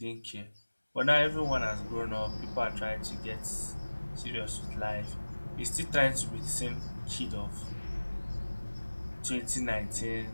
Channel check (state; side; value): inverted; both; correlation -1.00